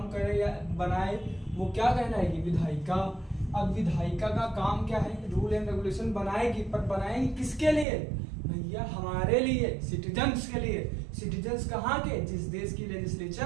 करे या बनाए वो क्या कहलाएगी? विधायिका। अब विधायिका का काम क्या है? रूल एंड रेगुलेशन बनाएगी, पर बनाएगी किसके लिए भैया? हमारे लिए, सिटीजन्स के लिए। सिटीजन्स कहाँ के? जिस देश की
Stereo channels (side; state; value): left; drops out; at 7.9 s